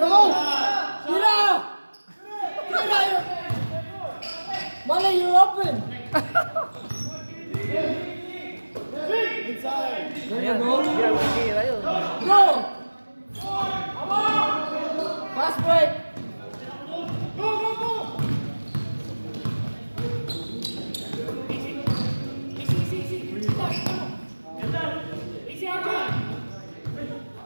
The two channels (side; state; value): both; inverted; correlation -1.00